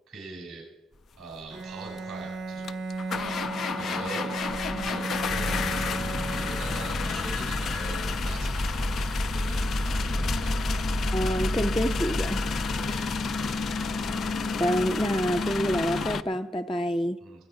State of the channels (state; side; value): normal; both; correlation 0.83